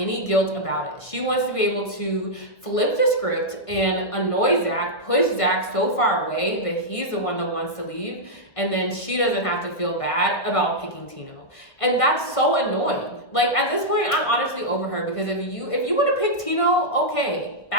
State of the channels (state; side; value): late; right; 1.7 ms